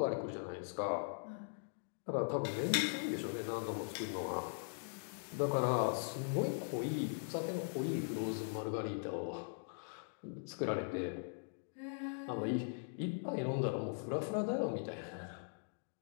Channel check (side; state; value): right; silent; digital silence